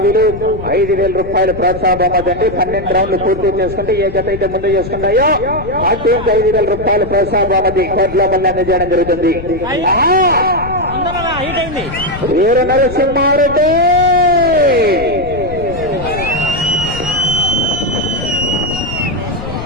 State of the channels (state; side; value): noise; left; rumble, 11 dB below the sound